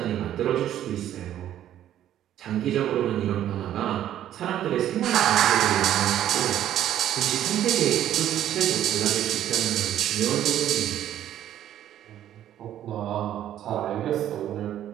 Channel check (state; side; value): quieter; left; 11.5 dB